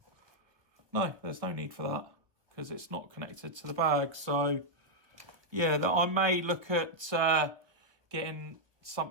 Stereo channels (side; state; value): left; late; 1.2 ms